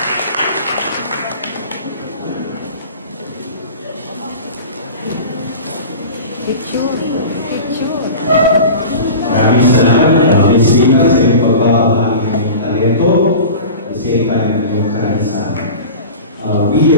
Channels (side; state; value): both; inverted; correlation -0.35